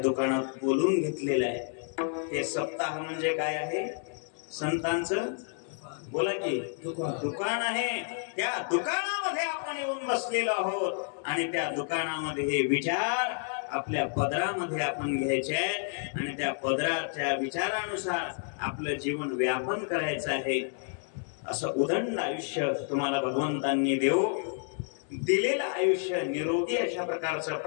बोलून घेतलेलं आहे. हे सप्ताह म्हणजे काय आहे? संतांचं बोला की दुकान आहे. त्या दुकानामध्ये आपण येऊन बसलेलो आहोत आणि त्या दुकानामध्ये हे विचार आपल्या पदरामध्ये आपण घ्यायचे आहेत आणि त्या पदराच्या विचारानुसार आपलं जीवन व्यापन करायचं आहे. असं उदंड आयुष्य तुम्हाला भगवंतांनी दिलेलं आयुष्य निरोगी अशा प्रकारचं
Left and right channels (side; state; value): right; silent; 58 dB below the other